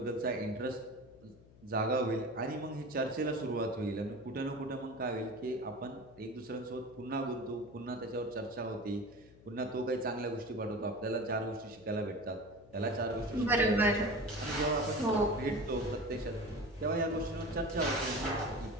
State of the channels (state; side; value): noise; left; hum, 23 dB below the sound